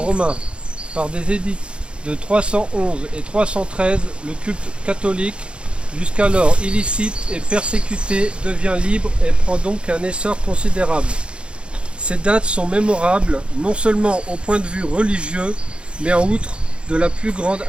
Par des édits de 311 et 313, le culte catholique, jusqu'alors illicite et persécuté, devient libre et prend donc un essor considérable. Ces dates sont mémorables, non seulement au point de vue religieux, mais en outre de la plus grande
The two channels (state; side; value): late; left; 0.056 ms